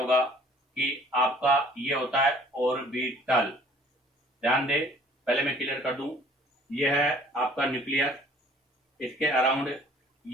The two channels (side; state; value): both; normal; correlation 0.55